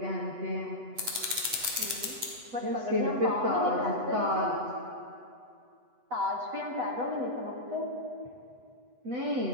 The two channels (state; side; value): late; left; 8.1 ms